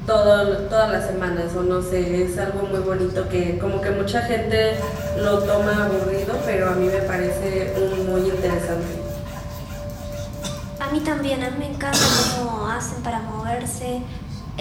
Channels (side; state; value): both; identical; correlation 1.00